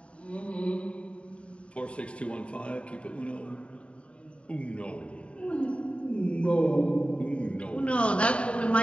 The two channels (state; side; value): late; right; 0.061 ms